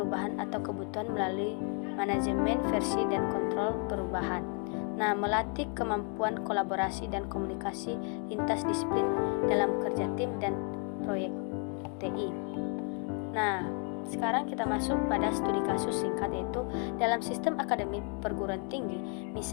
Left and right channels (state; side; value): quieter; right; 39.9 dB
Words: atau kebutuhan melalui manajemen versi dan kontrol perubahan. Nah, melatih kemampuan kolaborasi dan komunikasi lintas disiplin dalam kerja tim dan proyek TI. Nah, sekarang kita masuk pada studi kasus singkat yaitu dalam sistem akademik perguruan tinggi.